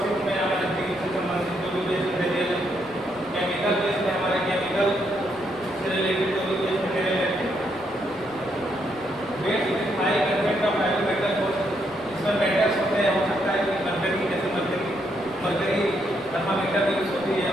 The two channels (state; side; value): noise; right; rumble, 25 dB below the sound